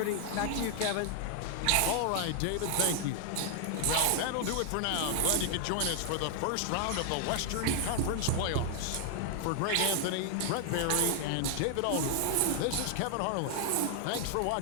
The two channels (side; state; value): both; different; correlation 0.00